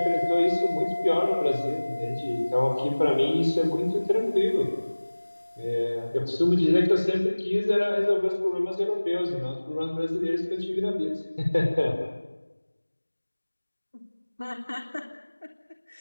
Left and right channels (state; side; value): inverted; both; correlation -1.00